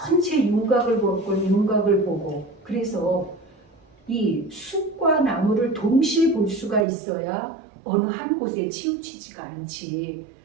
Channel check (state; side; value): drops out; left; at 6.9 s